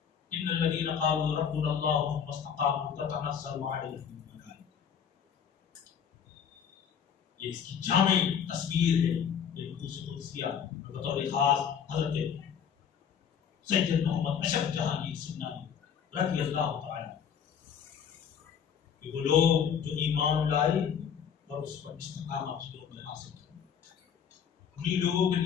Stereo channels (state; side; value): quieter; right; 7.8 dB